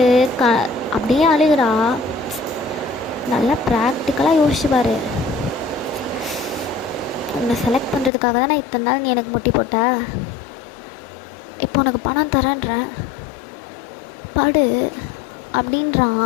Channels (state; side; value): drops out; right; at 8.1 s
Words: அப்படியே அழுகிறா. நல்லா ப்ராக்டிக்கலாக யோசிச்சுப்பார். உன்னை செலக்ட் பண்ணுறதுக்காக தான் நான் இத்தனை நாள் நீ எனக்கு முட்டி போட்ட. இப்போ உனக்கு பணம் தரேன்றேன், படு